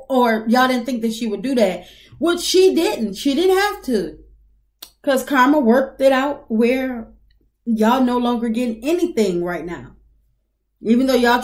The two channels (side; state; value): both; identical; correlation 1.00